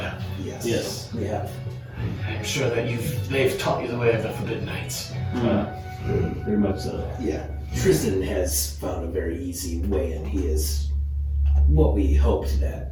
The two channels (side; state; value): both; identical; correlation 1.00